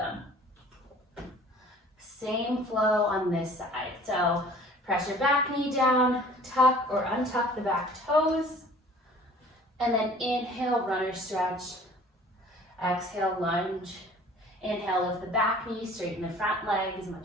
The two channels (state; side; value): normal; both; correlation 0.49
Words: Same flow on this side. So press your back knee down, tuck or untuck the back toes, and then inhale, runner stretch. Exhale, lunge. Inhale, lift the back knee, straighten the front leg as